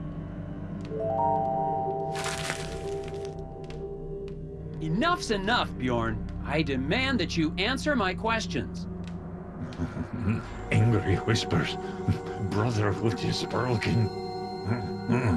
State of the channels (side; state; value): both; identical; correlation 1.00